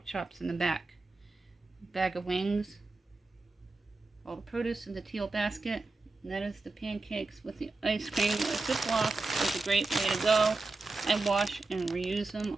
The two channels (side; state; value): left; quieter; 3.5 dB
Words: chops in the back. Bag of wings, all the produce in the teal basket, and that is the pancakes with the ice cream. A Ziploc is a great way to go. I wash and reuse them